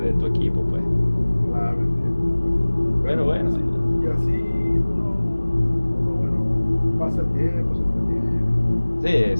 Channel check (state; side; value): inverted; both; correlation -1.00